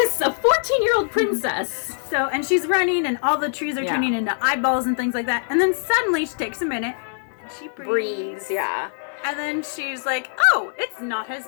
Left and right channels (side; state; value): right; silent; digital silence